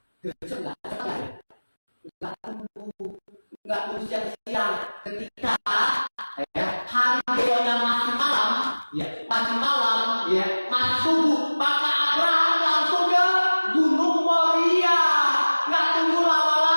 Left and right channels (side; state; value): both; inverted; correlation -1.00